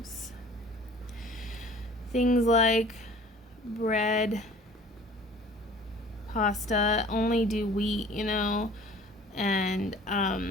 Things like bread, pasta, only do wheat, and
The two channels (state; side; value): normal; both; correlation 0.48